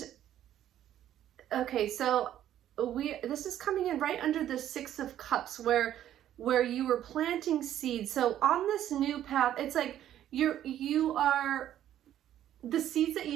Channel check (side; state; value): left; quieter; 11.6 dB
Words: okay, so this is coming in right under the Six of Cups where you were planting seeds. So on this new path, it's like you are the seeds that